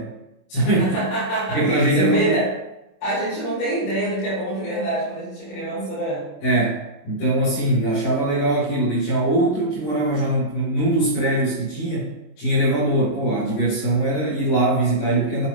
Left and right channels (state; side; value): late; right; 27 ms